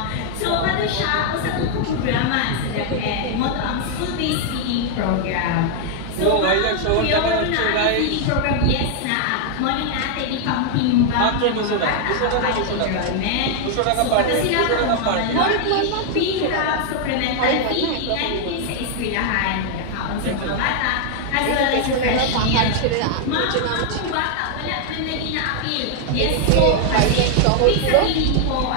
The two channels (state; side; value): different; both; correlation 0.00